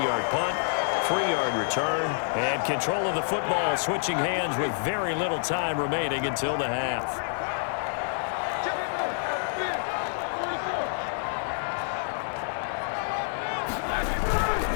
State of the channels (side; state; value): right; silent; digital silence